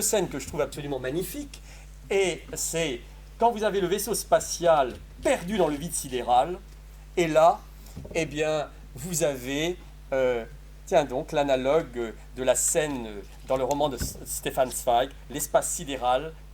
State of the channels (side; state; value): both; identical; correlation 1.00